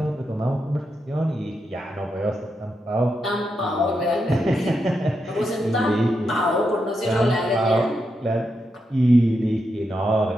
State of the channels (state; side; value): normal; both; correlation 0.84